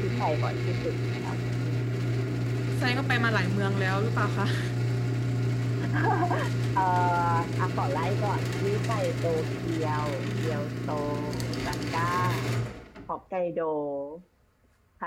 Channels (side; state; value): both; identical; correlation 1.00